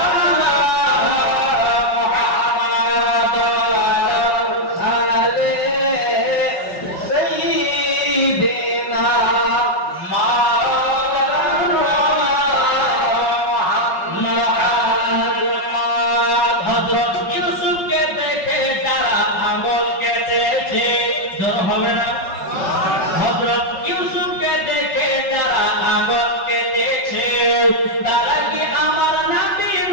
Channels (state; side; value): late; right; 5.4 ms